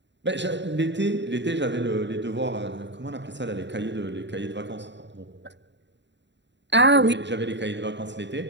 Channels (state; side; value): late; left; 0.52 ms